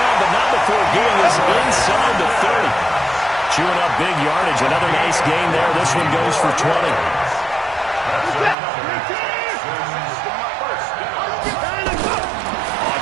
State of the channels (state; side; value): drops out; left; at 8.6 s